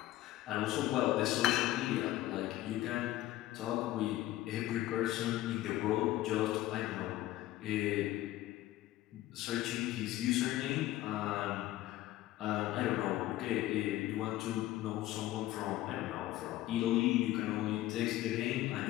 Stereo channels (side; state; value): right; quieter; 15.5 dB